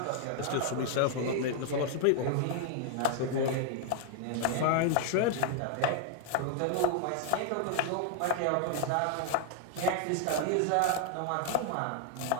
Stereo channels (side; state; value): both; different; correlation 0.00